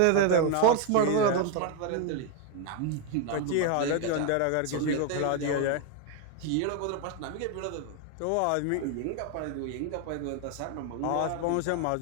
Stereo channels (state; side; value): different; both; correlation 0.01